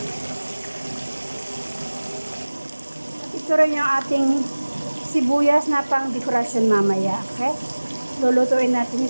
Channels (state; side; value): inverted; both; correlation -1.00